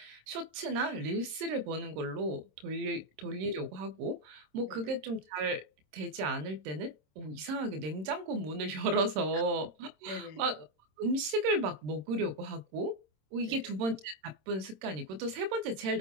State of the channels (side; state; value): left; late; 26 ms